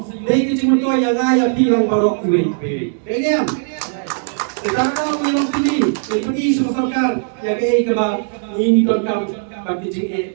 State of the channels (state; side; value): silent; left; digital silence